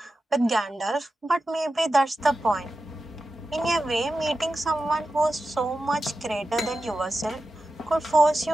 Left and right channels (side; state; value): both; normal; correlation 0.91